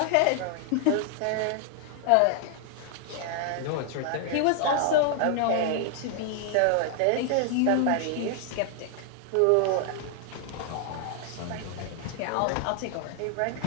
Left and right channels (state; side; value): different; both; correlation 0.00